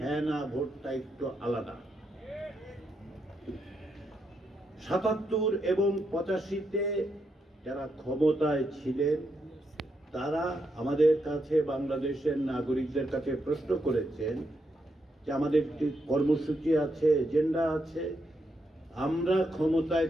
ভোটটা একটু আলাদা। 77 এবং 85-তে যারা ক্ষমতায় ছিলেন তারা আমাদের কাছে, বাংলাদেশের নাগরিকদের কাছে প্রশ্ন করেছেন যে আমাদের একটি কর্মসূচি আছে, এজেন্ডা আছে, আমরা ক্ষমতায়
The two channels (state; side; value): normal; both; correlation 0.81